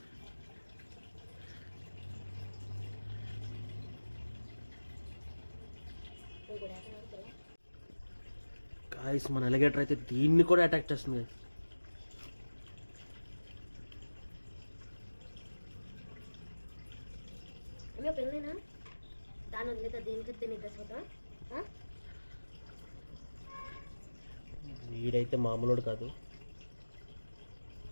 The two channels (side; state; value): both; inverted; correlation -1.00